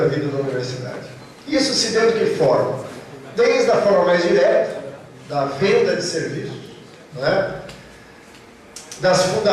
vida da universidade. Isso se deu de que forma? Desde a forma mais direta, da venda de serviços, né? Das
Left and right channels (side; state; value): both; identical; correlation 1.00